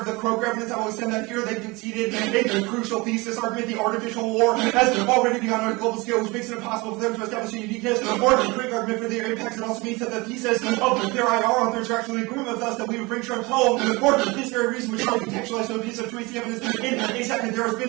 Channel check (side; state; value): left; quieter; 24.6 dB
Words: The Crow evidence, I will extend that here. They conceded a crucial thesis argument. The artificial war has already begun on a global scale, which makes it impossible for them to establish a uniqueness or a quick argument for their impacts. It also means that the thesis of their IR authors are actually agreeing with us that we would bring Trump home for this very reason, which is contextualized so a piece of truth evidence. In a second, there has